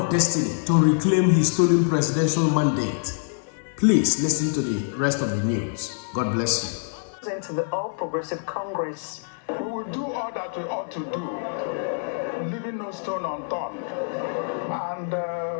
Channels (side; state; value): right; silent; 57 dB below the other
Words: destiny, to reclaim his stolen presidential mandate. Please listen to the rest of the news. God bless you. Into the All Progressive Congress. We will do all that we ought to do, leaving no stone unturned. And